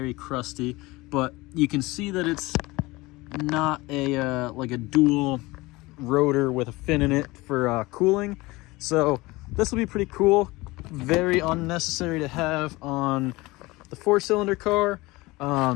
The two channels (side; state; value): right; quieter; 21.6 dB